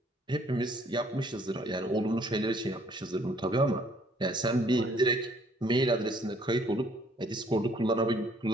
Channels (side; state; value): both; normal; correlation 0.62